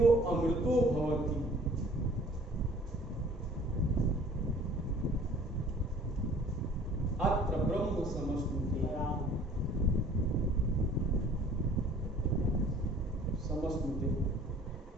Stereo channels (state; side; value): normal; both; correlation 0.52